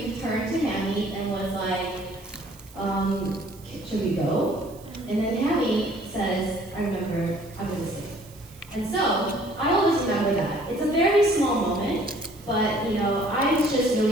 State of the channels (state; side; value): noise; right; hiss, 23 dB below the sound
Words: turned to Hammy and was like, should we go? And then Hammy says, I'm going to stay. And so, I always remember that. It's a very small moment, but, I was just